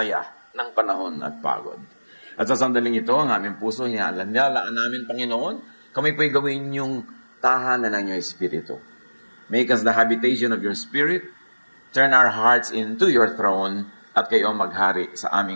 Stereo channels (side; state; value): both; inverted; correlation -1.00